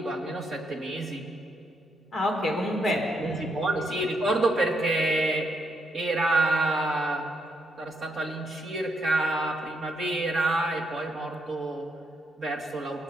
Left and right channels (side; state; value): both; normal; correlation 0.77